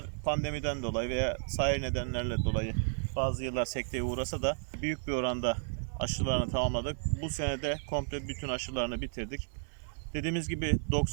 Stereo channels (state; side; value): silent; left; digital silence